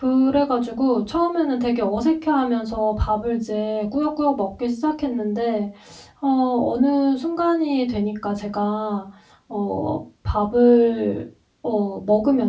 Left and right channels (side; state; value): both; identical; correlation 1.00